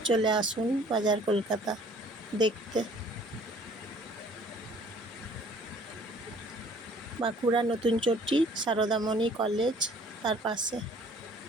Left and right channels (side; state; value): both; normal; correlation 0.54